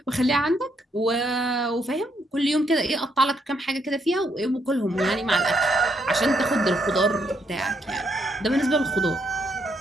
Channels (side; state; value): both; normal; correlation 0.75